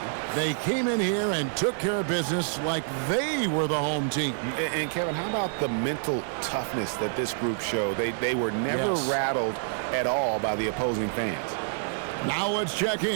They came in here and took care of business like they were the home team. And Kevin, how about the mental toughness that this group showed? They were never rattled at all by the opposing fans. Now let's check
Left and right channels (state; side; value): silent; left; 60 dB below the other